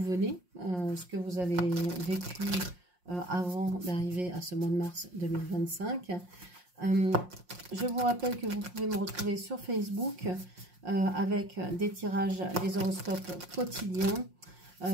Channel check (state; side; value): late; left; 5.6 ms